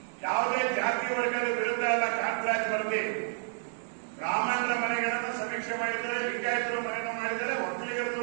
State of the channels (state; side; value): silent; left; digital silence